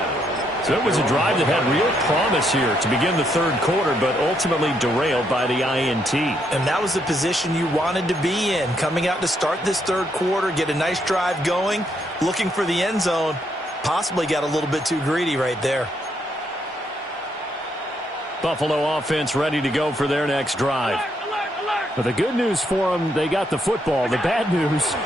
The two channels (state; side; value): normal; both; correlation 0.75